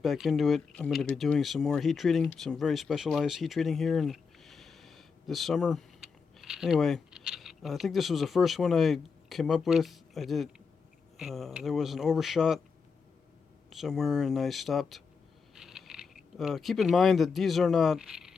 back into it. I'm going to be doing some more heat treating, some very specialized heat treating here in this summer. Anyway, I think this was the first one I came up with. I did. There was an overshot somewhere, and I stopped. Keep in mind that these are not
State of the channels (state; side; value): quieter; right; 5.4 dB